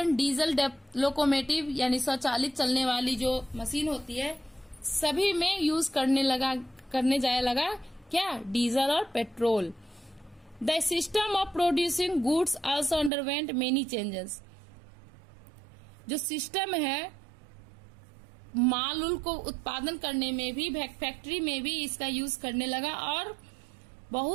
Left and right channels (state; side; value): drops out; left; at 13.1 s